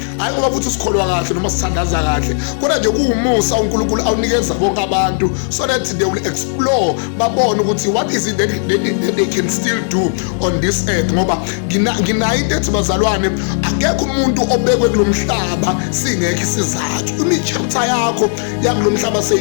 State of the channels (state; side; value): silent; right; digital silence